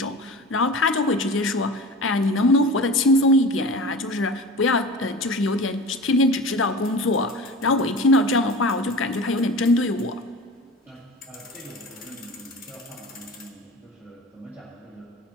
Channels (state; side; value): normal; both; correlation 0.34